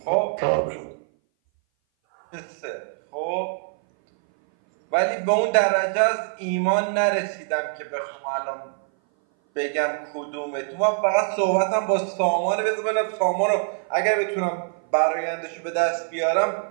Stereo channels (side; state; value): left; silent; 58 dB below the other